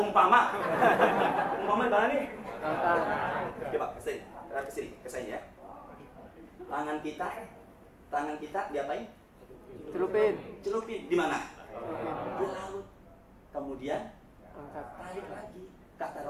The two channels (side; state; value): both; identical; correlation 1.00